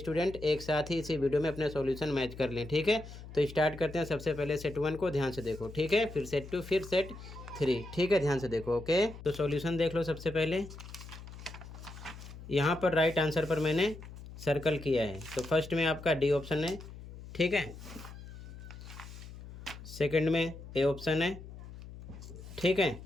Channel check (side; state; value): left; noise; hum, 14 dB below the sound